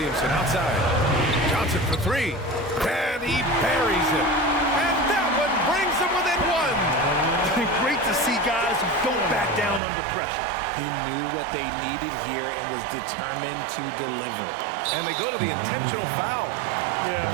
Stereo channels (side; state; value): left; drops out; at 9.8 s